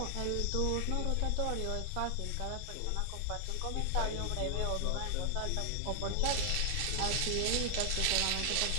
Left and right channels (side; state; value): both; different; correlation 0.00